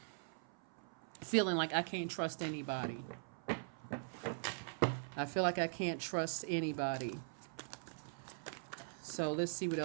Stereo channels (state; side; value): silent; left; 50 dB below the other